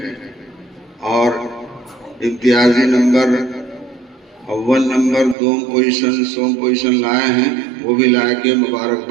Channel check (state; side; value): drops out; left; at 5.4 s